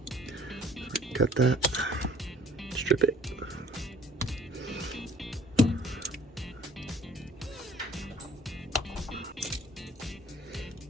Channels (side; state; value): both; normal; correlation 0.54